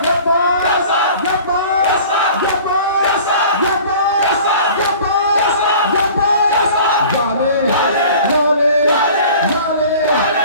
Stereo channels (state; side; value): inverted; both; correlation -0.45